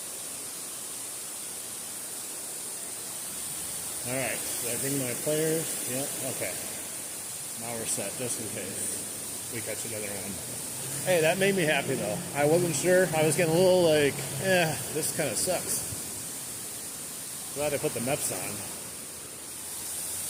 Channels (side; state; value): both; identical; correlation 1.00